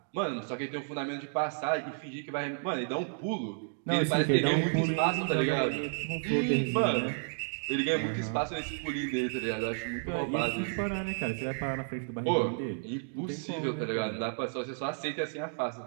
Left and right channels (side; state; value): left; silent; digital silence